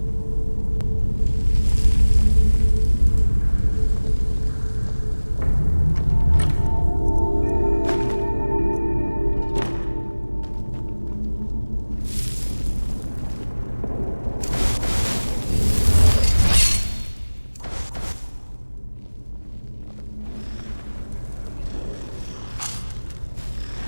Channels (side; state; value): both; inverted; correlation -1.00